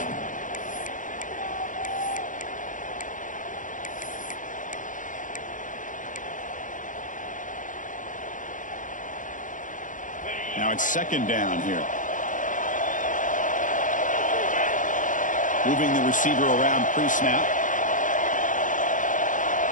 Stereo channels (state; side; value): late; right; 0.38 ms